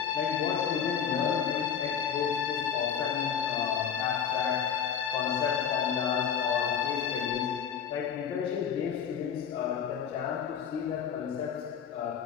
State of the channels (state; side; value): quieter; right; 7.7 dB